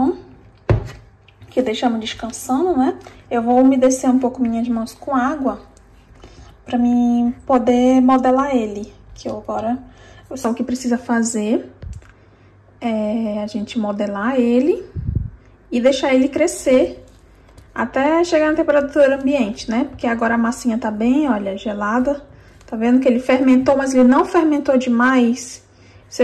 que deixamos descansando, né? Eu vou umedecer um pouco minhas mãos com água, pra mim poder modelar ele. Que eu agora, só o que precisa fazer é a gente modelar ele e deixar ele crescer até chegar na temperatura ambiente, né? Porque agora a massinha tá bem, olha, gelada. Tá vendo que ele fermentou, mas ele não fermentou demais. Se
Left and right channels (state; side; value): identical; both; correlation 1.00